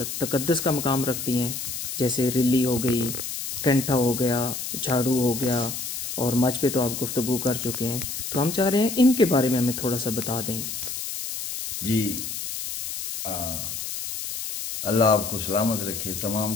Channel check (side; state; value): left; noise; hiss, 6 dB below the sound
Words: تقدس کا مقام رکھتی ہیں، جیسے رلی ہو گئی، کینٹا ہو گیا، جھاڑو ہو گیا، اور مچ پہ تو آپ گفتگو کر چکے ہیں، تو ہم چاہ رہے ہیں ان کے بارے میں ہمیں تھوڑا سا بتا دیں۔ جی، اللہ آپ کو سلامت رکھے، تمام